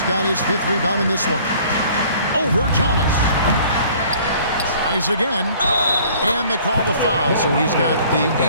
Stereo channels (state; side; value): inverted; both; correlation -0.53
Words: got his 5th rebound in this one. Over Thomas. Tries again. And they call the foul, so he's got the